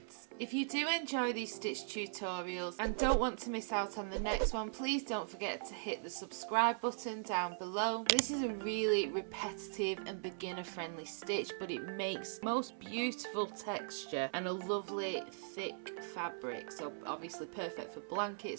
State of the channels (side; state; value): left; silent; 51 dB below the other